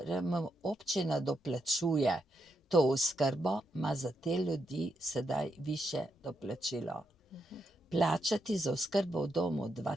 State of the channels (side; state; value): both; normal; correlation 0.82